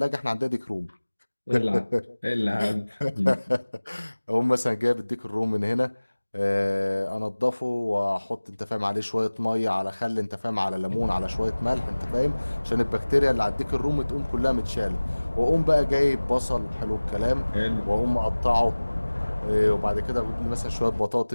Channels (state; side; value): inverted; both; correlation -1.00